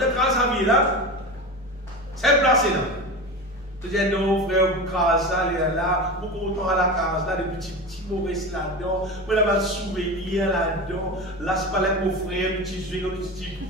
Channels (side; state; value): both; normal; correlation 0.26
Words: as une case à vie là, c'est placé là. Tu dis non, frère, vous crasez ça, là, vous content à la case là, des petits mauvais là-dedans, vous avez un souvenir là-dedans, là, c'est pas là mon frère, petit jeu,